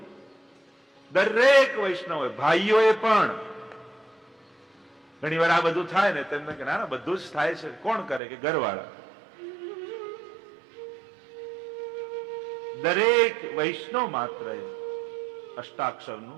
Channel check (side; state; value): left; drops out; at 8.2 s